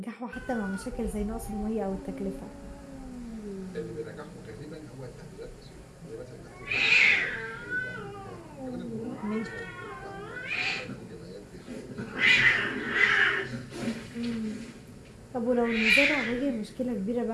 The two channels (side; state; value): both; identical; correlation 1.00